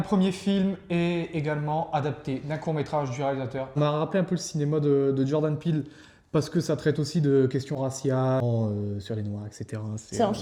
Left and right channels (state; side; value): identical; both; correlation 1.00